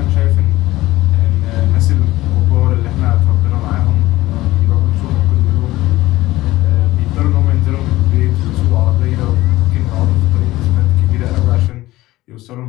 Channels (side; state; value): right; quieter; 17.4 dB